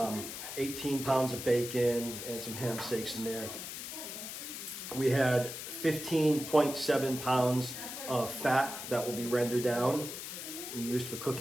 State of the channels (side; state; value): left; noise; hiss, 8 dB below the sound